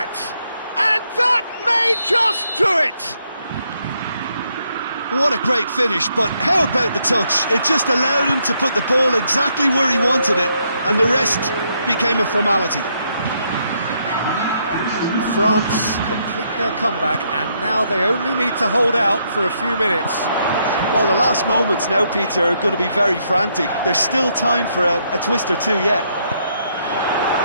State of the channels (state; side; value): inverted; both; correlation -0.75